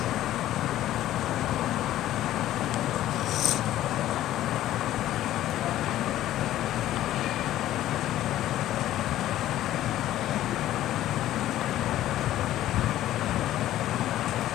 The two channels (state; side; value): quieter; right; 13.5 dB